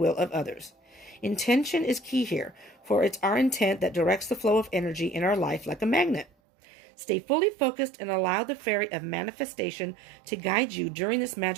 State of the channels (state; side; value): drops out; left; at 6.2 s